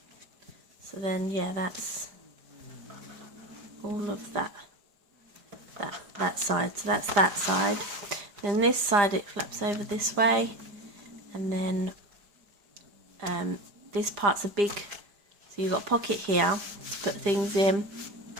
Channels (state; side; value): late; left; 4.9 ms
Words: So then, yeah, that's all of that side. So that's that side. Then this side, it flaps over this way, and then this part's a big, so you've got a pocket here to put things in,